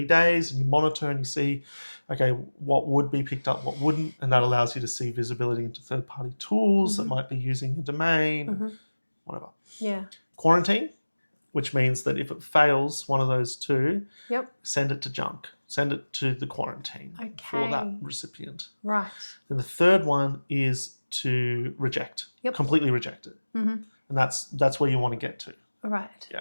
days and you monitor and you see, okay, what would be picked up, what wouldn't, and that allows you to see visibility into third-party tools that might be using your domain, whatever. Yeah. Quarantine, which means that if it fails one of those two, send it to junk. Send it to the quarantine for that recipient. Right. Then the third one is to reject, completely reject it. And that's where you want to get to. Right. Yeah.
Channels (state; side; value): inverted; both; correlation -1.00